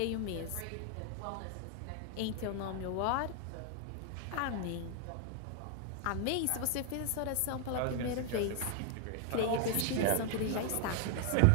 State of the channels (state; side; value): different; both; correlation 0.00